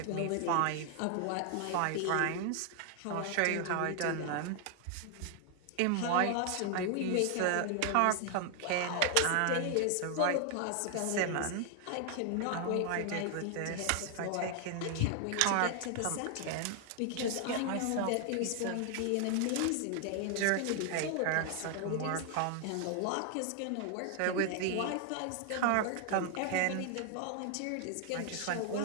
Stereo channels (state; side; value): different; both; correlation 0.00